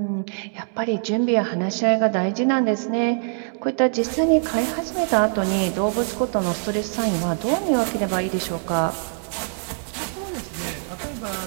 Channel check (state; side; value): silent; left; 63 dB below the other